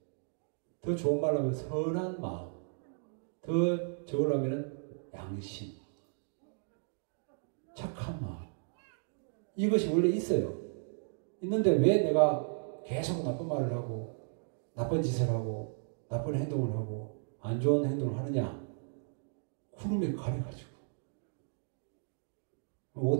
더 좋은 말로 하면 선한 마음, 더 저걸로 하면 양심, 착한 마음, 이것이 원래 있어요. 있는데 왜 내가 계속 나쁜 말을 하고 나쁜 짓을 하고 나쁜 행동을 하고 안 좋은 행동을 하느냐? 구름에 가려가지고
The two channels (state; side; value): silent; left; digital silence